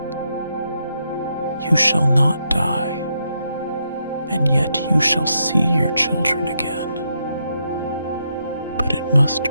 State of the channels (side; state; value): both; inverted; correlation -0.80